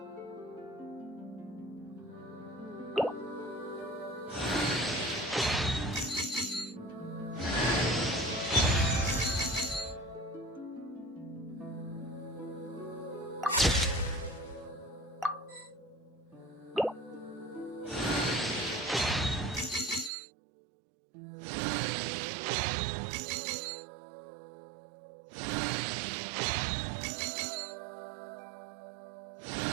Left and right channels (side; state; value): left; drops out; at 20.1 s